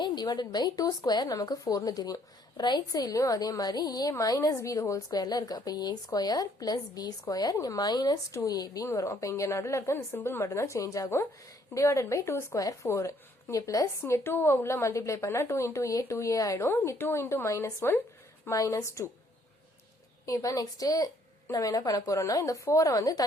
divided by 2 square நமக்கு 4 னு தெரியும். ரைட் சைடுலயும் அதே மாதிரி a minus b the whole squareல இருக்கு. அப்ப a square plus b square இங்க minus 2ab னு வரும். அப்ப இங்க நடுவுல இருக்க இந்த சிம்பிள் மட்டும் தான் சேஞ்ச் ஆகும். divided by 2 square 4. இங்க பிளஸ் இங்க 2 உள்ள மல்டிப்ளை பண்ணா 2 into a 2a ஆயிடும். இங்க 2 into minus 1 minus 2. இப்போ நெக்ஸ்ட் நம்ம என்ன பண்ண போறோம்னா இந்த 4 வந்து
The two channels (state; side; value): normal; both; correlation 0.65